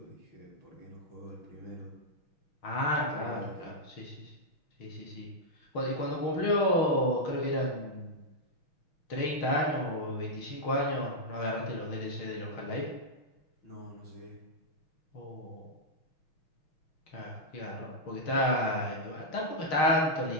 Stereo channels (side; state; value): right; late; 6.2 ms